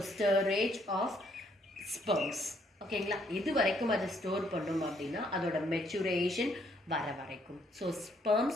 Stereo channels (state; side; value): normal; both; correlation 0.69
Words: storage of sperms. ஓகேங்களா? இது வரைக்கும் அதை ஸ்டோர் பண்ணும் அப்படின்னா அதோட மெச்சுரேஷன் வர வரைக்கும். ஸோ